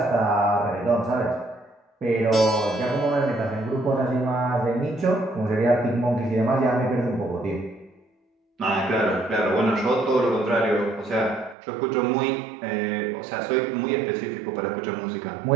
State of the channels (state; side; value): drops out; left; at 11.6 s